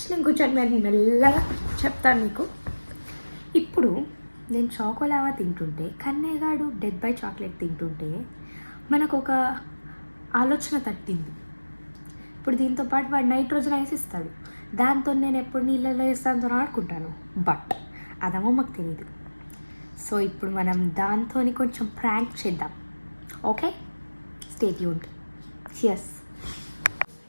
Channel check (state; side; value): inverted; both; correlation -1.00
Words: నేను కొంచెం మెల్లగా చెప్తాను మీకు. ఇప్పుడు నేను చాకోలావా తింటుంటే, కన్నయ్యగాడు డెడ్ బై చాక్లెట్ తింటుంటే మనకు ఒక ఆలోచన తట్టింది. ఇప్పుడు దీంతో పాటు వాడు నైట్రోజన్ ఐస్ ఇస్తాడు, దాంతో నేను ఎప్పుడు నీళ్ళలో వేస్తాను అనుకుంటాను. బట్ అదేమో మాకు తెలియదు. సో ఇప్పుడు మనం దాంతో కొంచెం ప్రాంక్ చేద్దాం. Okay, stay tuned. చియర్స్.